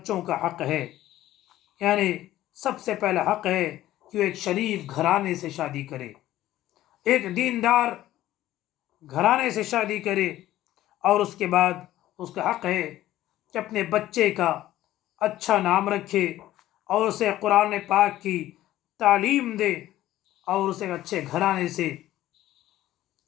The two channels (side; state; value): right; quieter; 14.4 dB